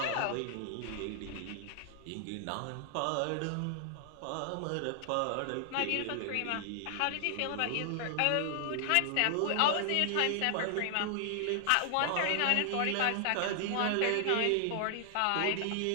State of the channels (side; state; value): both; different; correlation 0.00